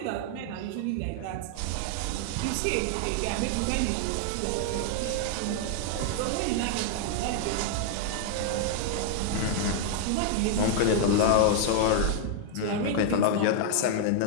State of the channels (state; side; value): different; both; correlation 0.00